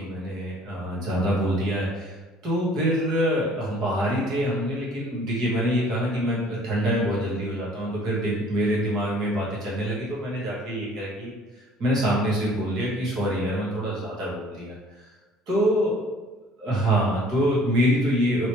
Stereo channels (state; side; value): normal; both; correlation 0.54